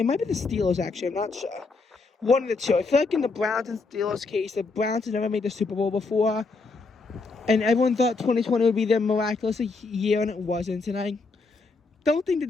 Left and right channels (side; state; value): right; quieter; 4.0 dB